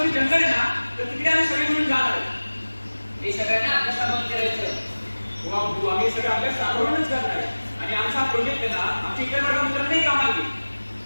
जी जंगल आहे ना, तर तिकडे आम्ही सगळे मिळून जाणार आहे. हे सगळ्यांना अभ्यासाबंद करायचं. हो अब्बू, आम्ही सगळं अभ्यास राबवूनच करणार आहे. आणि आमचा हा प्रोजेक्ट आहे ना, आमच्या इतर वर्गमित्रांनाही कामाला घेईल.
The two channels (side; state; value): both; inverted; correlation -1.00